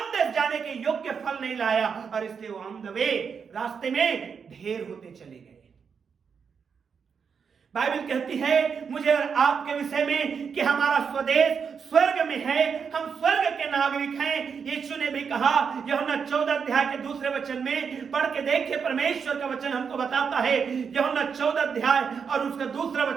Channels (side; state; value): left; quieter; 6.3 dB